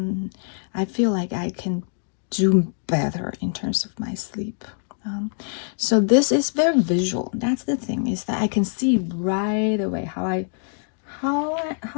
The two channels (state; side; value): silent; right; digital silence